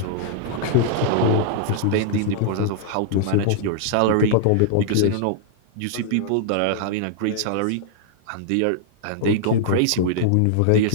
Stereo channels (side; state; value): both; different; correlation -0.01